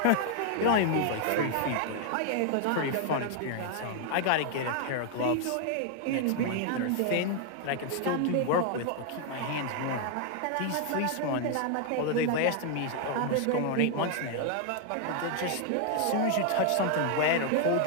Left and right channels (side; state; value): both; different; correlation 0.00